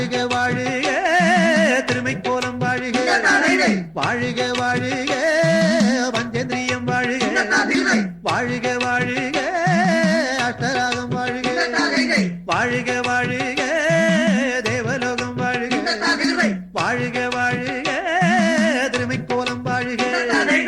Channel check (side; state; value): both; identical; correlation 1.00